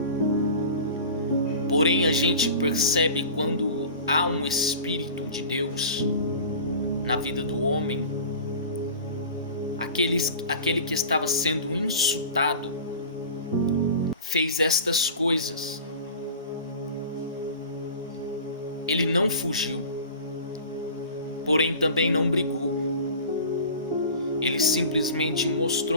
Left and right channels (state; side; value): inverted; both; correlation -0.38